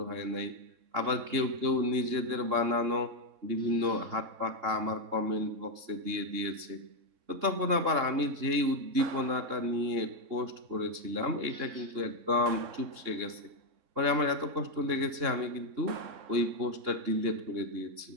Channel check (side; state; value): left; late; 3.6 ms